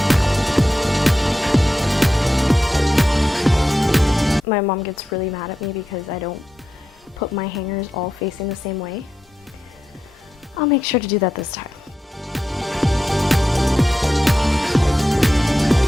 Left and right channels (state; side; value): normal; both; correlation 0.88